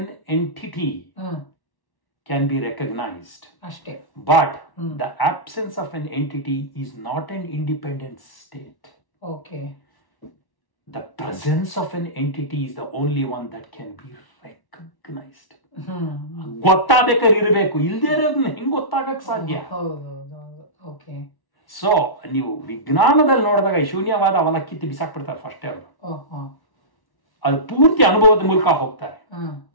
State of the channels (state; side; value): late; right; 1.1 ms